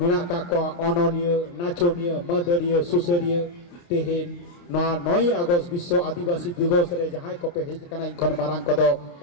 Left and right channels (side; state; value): right; late; 29 ms